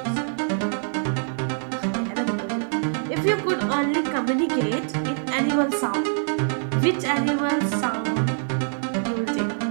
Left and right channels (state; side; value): silent; left; 62 dB below the other